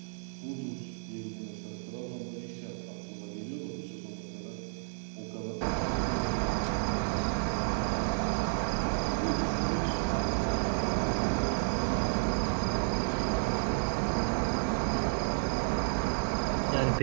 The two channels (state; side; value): silent; left; digital silence